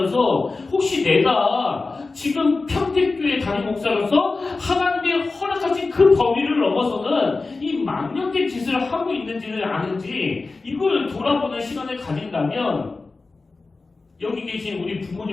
혹시 내가 지금 평택교회 담임 목사로서 하나님의 허락하신 그 범위를 넘어서는 이 망령된 짓을 하고 있는지는 아는지 이걸 돌아보는 시간을 가진다면 여기 계신 우리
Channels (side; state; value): right; quieter; 3.7 dB